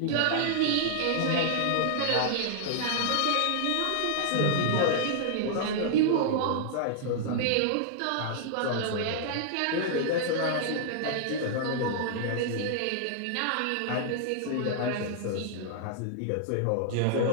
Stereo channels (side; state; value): both; different; correlation -0.01